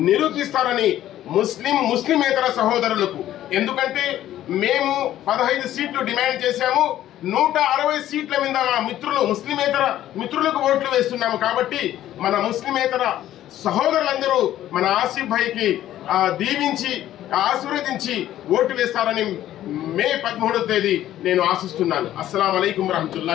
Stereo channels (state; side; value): quieter; right; 12.8 dB